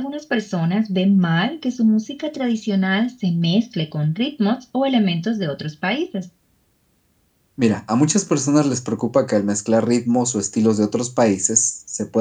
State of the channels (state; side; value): identical; both; correlation 1.00